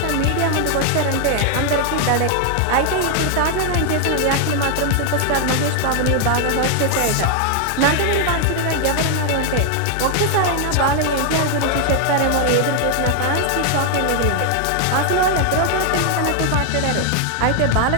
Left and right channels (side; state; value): both; different; correlation 0.00